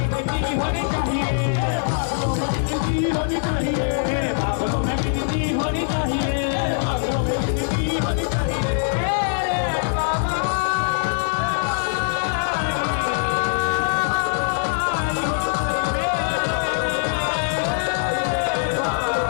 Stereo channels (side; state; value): right; silent; digital silence